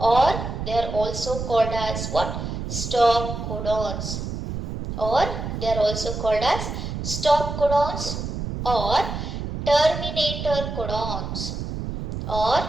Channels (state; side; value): noise; right; rumble, 5 dB below the sound